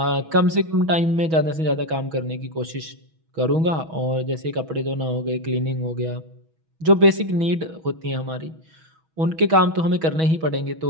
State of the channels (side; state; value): left; late; 6.2 ms